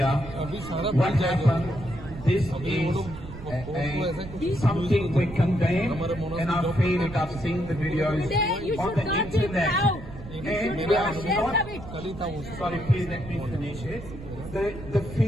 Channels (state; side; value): noise; right; rumble, 13 dB below the sound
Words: what happened? This is something we condemn, and I feel it. I've seen the videos on the internet. And we are not. Sorry, please let me finish it. The